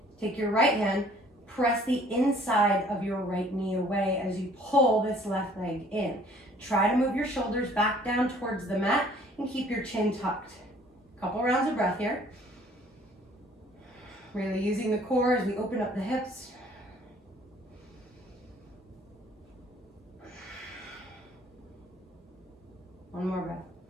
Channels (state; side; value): normal; both; correlation 0.56